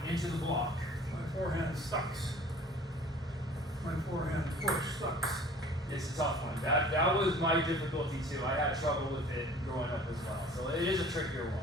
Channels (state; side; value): normal; both; correlation 0.48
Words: into the block. My forehand sucks. My forehand push sucks. It's a tough one. That was my difficulty too. I had trouble with it growing up as well. So it is a trickier